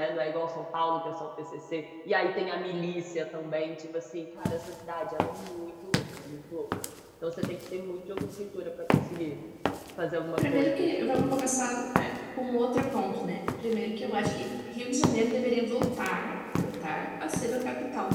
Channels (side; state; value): both; identical; correlation 1.00